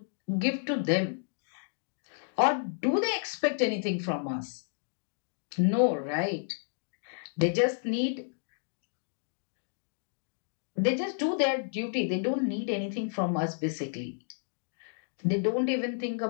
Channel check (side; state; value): right; silent; digital silence